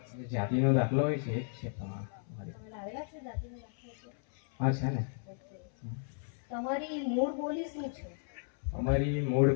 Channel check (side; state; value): right; silent; 55 dB below the other